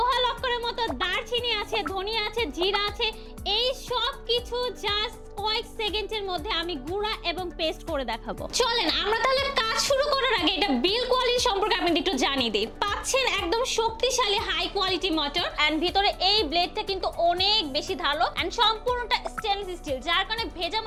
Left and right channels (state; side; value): identical; both; correlation 1.00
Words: লক্করের মতো দারচিনি আছে, ধনিয়া আছে, জিরা আছে। এই সব কিছু জাস্ট কয়েক সেকেন্ডের মধ্যে আমি গুঁড়া এবং পেস্ট করে দেখাবো। চলেন আমরা তাহলে কাজ শুরু করার আগে এটা বিল্ড কোয়ালিটি সম্পর্কে আপনাদের একটু জানিয়ে দিই। পাচ্ছেন একদম শক্তিশালী হাই কোয়ালিটি মোটর, এন্ড ভিতরে এই ব্লেডটা কিন্তু অনেক বেশি ধারালো এন্ড সম্পূর্ণটা স্টেনলেস স্টিল, যার কারণে ভেজা